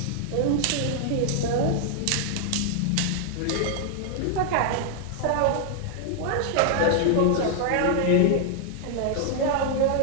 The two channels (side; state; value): both; different; correlation 0.00